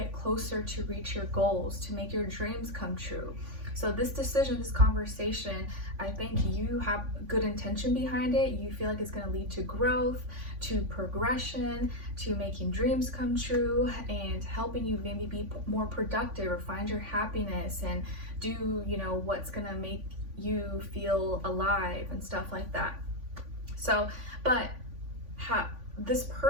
closer to reach your goals, to make your dreams come true. So this decision, this conversation, I think you have good intention behind it. You feel like it's going to lead to growth, to progression, to making dreams come true, and helping you maybe be more productive or find your happiness and do, what's going to make you feel alive and stuff like that. So, but this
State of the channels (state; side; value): late; left; 3.5 ms